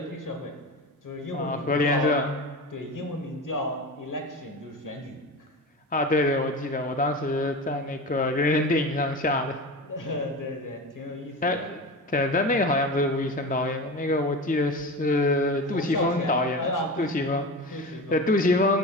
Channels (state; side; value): normal; both; correlation 0.28